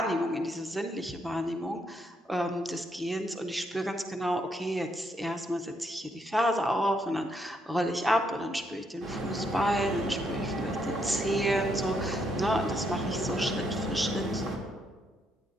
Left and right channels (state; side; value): normal; both; correlation 0.75